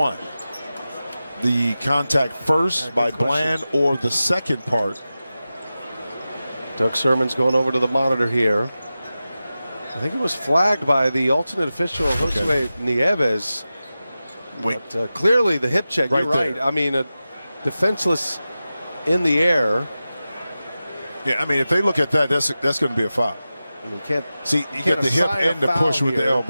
The contact first by Bland or the second part? Doug Sermon's going over to the monitor here. I think it was flagged by the alternate official, Josue Nieves. But clearly the hip check, you're right. I mean, a defenseless in the air. Yeah, I mean, if they look at that, that's going to be a foul. I mean, you can't see. You get the hip and the push with the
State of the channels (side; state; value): both; inverted; correlation -0.94